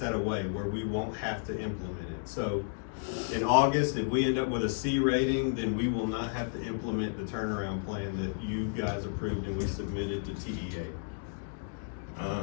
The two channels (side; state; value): right; silent; digital silence